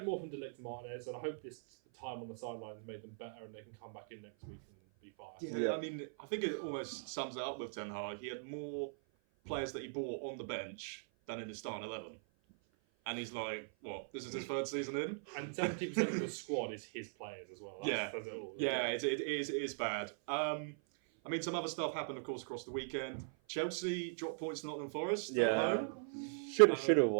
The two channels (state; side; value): silent; left; 51 dB below the other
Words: more from Delect Martinez, and I hope this time on the sidelines made them better, and they can come back in next week and be fine. Yeah, I mean, I think it almost sums it up with Ten Hag. He had more players that he bought on the bench than in his starting 11. And he's like, what? This is his 3rd season in? And 70% of the squad is his players as well. It is bad. I mean, some other stuff happened, of course, across the weekend. Chelsea dropped points to Nottingham Forest at home. Should have